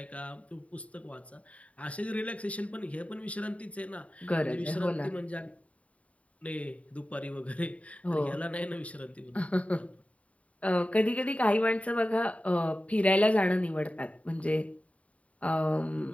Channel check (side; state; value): right; late; 0.066 ms